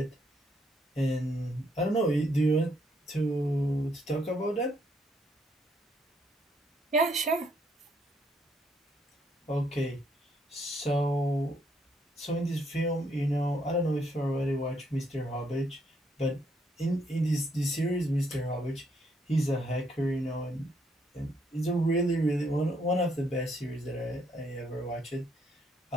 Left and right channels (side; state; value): both; normal; correlation 0.72